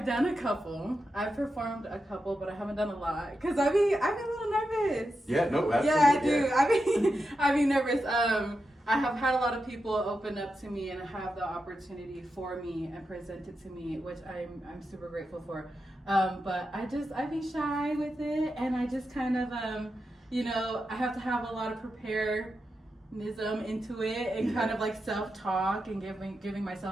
done a couple. I've performed a couple, but I haven't done a lot because I'm a little nervous. Yeah, no, absolutely. Yeah, I do. I'd be nervous. I have had a lot of people open up to me and have the opportunity for me and present it to me, which I'm super grateful for. But I'd be shy with it, and I just kind of I have to have a lot of preparedness into it and kind of like self-talk and giving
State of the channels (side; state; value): both; normal; correlation 0.88